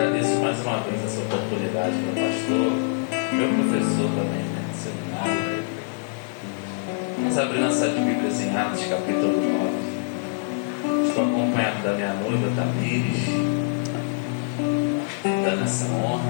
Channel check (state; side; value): silent; right; 62 dB below the other